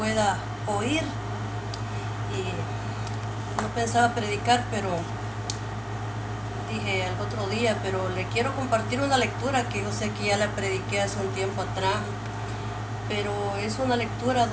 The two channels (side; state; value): both; identical; correlation 1.00